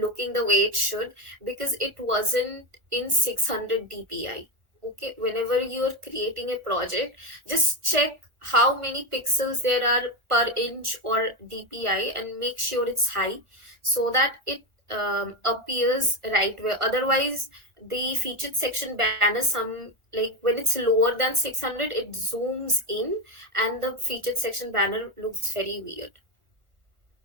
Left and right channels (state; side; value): late; left; 1.4 ms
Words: the way it should, because it wasn't in 600 dpi. Okay, whenever you're creating a project, just check how many pixels there are per inch or dpi and make sure it's high, so that it appears right way. Otherwise the featured section banner, some like when it's lower than 600, it zooms in and the featured section banner looks very weird.